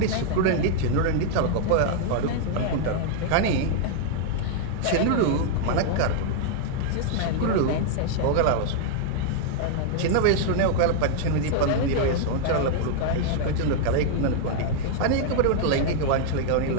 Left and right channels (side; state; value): both; different; correlation 0.00